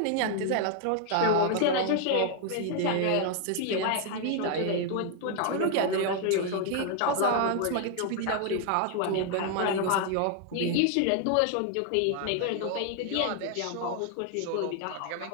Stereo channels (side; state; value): both; different; correlation 0.00